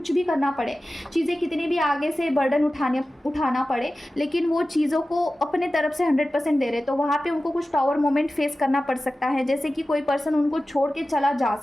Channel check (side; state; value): both; normal; correlation 0.95